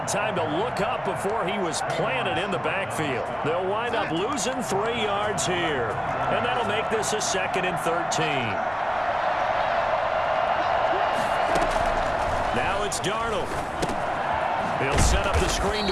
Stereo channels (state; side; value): identical; both; correlation 1.00